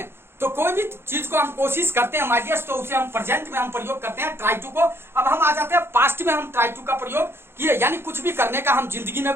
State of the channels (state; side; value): late; left; 0.11 ms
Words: तो कोई भी चीज को हम कोशिश करते हैं माय डियर्स, तो उसे हम प्रेजेंट में हम प्रयोग करते हैं ट्राई टू को. अब हम आ जाते हैं पास्ट में. हम ट्राई टू का प्रयोग किए यानी कुछ भी करने का हम जिंदगी में